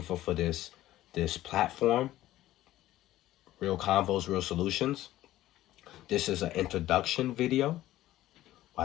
for this platform, Real Convos, Real Solutions. This is an introduction video.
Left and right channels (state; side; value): quieter; right; 14.8 dB